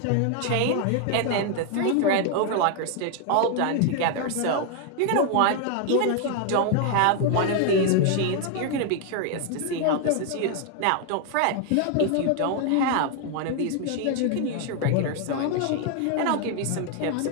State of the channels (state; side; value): different; both; correlation 0.00